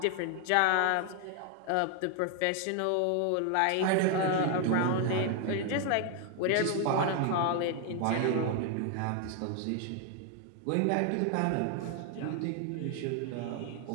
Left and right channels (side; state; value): both; different; correlation 0.00